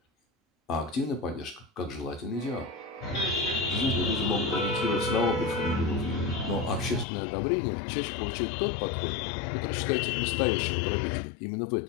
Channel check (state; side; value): drops out; right; at 7.1 s